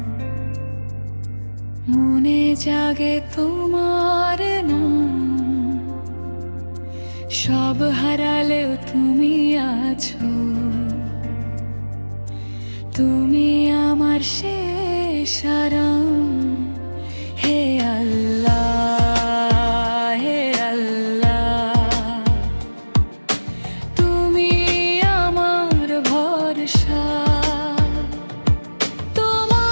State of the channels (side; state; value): both; inverted; correlation -1.00